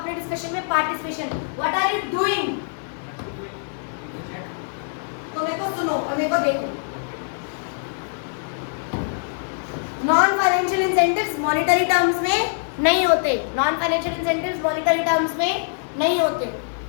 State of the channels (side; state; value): right; silent; digital silence